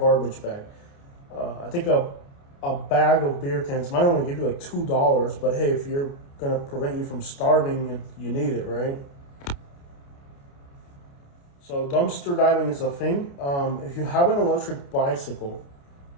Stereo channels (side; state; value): right; late; 29 ms